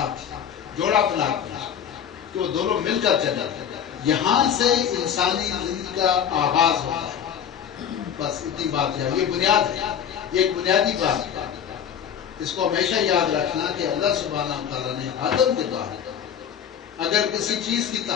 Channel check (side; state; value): right; quieter; 8.6 dB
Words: جوڑا بنا دیا کہ وہ دونوں مل کر چلے۔ یہاں سے انسانی زندگی کا آغاز ہوتا ہے، بس اتنی بات ہے، یہ بنیاد ہے، یہ ایک بنیادی بات ہے، اس کو ہمیشہ یاد رکھنا کہ اللہ سبحانہ تعالیٰ نے آدم کے بعد اگر کسی چیز کی